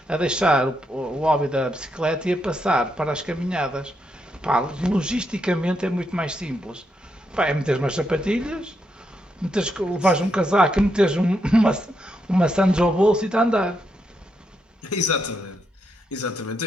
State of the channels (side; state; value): both; normal; correlation 0.80